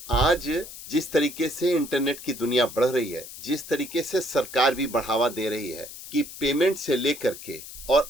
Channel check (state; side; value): noise; left; hiss, 13 dB below the sound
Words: आज जिस तरीके से इंटरनेट की दुनिया बढ़ रही है, जिस तरीके से सरकार भी बढ़ावा दे रही है कि पेमेंट से लेकर के और